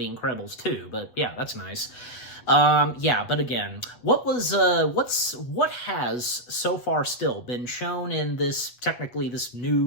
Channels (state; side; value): late; right; 8.1 ms